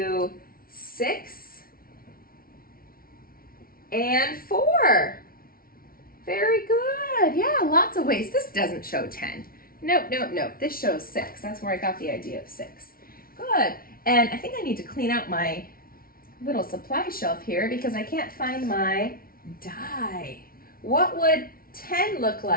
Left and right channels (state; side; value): late; right; 0.43 ms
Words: 6, and 4. Very good. Yeah, lots of ways. This doesn't show 10. Nope, nope, nope. This shows 6. That's where I got the idea of 6. Good. And I think I need to clean out my little supply shelf here because I can't find my die. What would 10 look